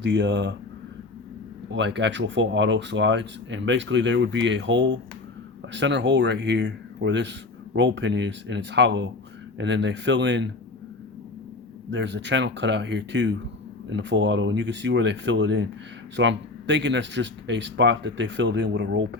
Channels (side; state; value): right; quieter; 3.4 dB